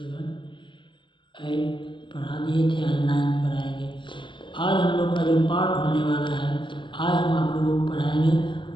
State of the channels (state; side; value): late; right; 0.24 ms